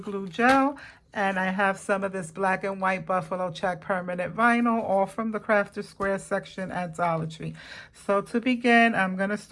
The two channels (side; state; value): both; identical; correlation 1.00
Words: gel, and I have some of this black and white buffalo check permanent vinyl, all from the Crafter Square section at Dollar Tree. So to begin, I'm going to